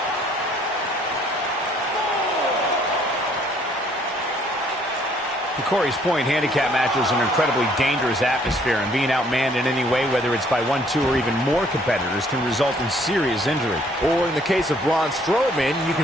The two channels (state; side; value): normal; both; correlation 0.62